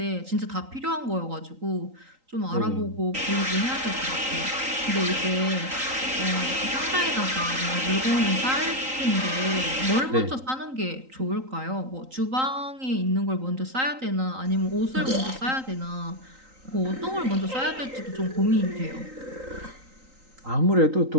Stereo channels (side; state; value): left; late; 3.8 ms